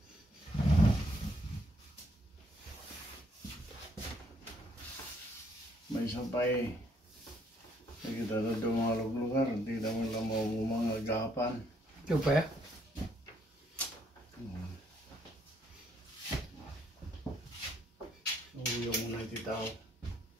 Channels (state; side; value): normal; both; correlation 0.69